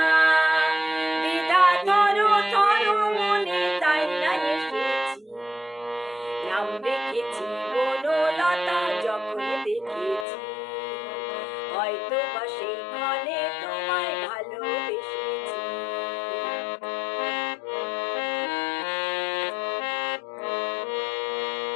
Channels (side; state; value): right; drops out; at 10.2 s